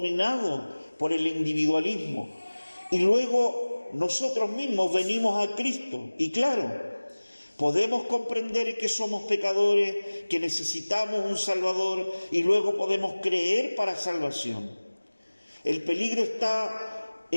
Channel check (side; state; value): both; inverted; correlation -1.00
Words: por el individualismo y luego nosotros mismos venimos a Cristo. Y claro, podemos comprender que somos pecadores, que necesitamos un Salvador y luego podemos creer para salvación. El peligro está